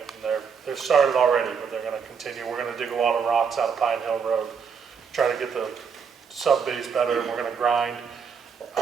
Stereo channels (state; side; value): quieter; left; 6.3 dB